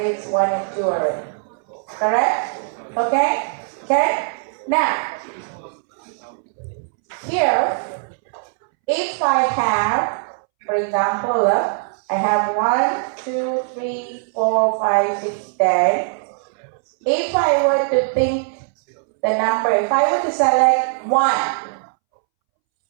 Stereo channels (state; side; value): silent; left; 65 dB below the other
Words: it's 1 and 2 already. Correct? Okay? Okay? Now, here, if I have, for example, I have 1, 2, 3, 4, 5, 6, 10. If I were to think the number, if I were to select 1,